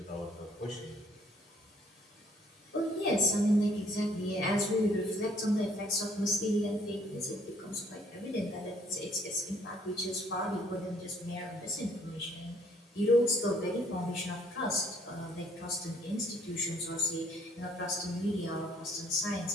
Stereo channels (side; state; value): both; normal; correlation 0.62